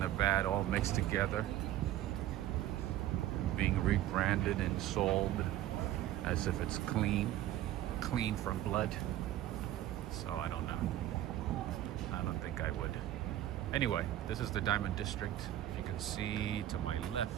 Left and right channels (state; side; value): quieter; left; 13.2 dB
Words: the bad all mixed together, being rebranded and sold as if it's clean from blood. So I don't know. I don't think I would. Anyway, this is the Diamond District. If you can see to my